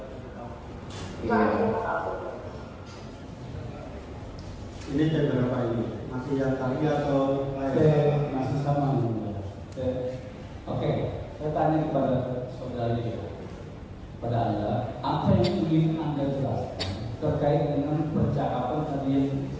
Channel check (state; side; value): identical; both; correlation 1.00